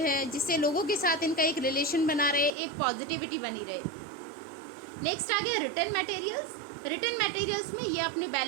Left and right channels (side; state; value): left; drops out; at 2.5 s